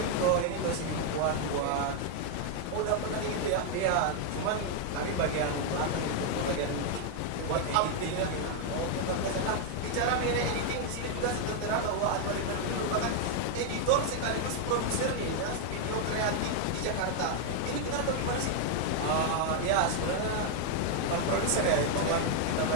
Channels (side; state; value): both; different; correlation 0.00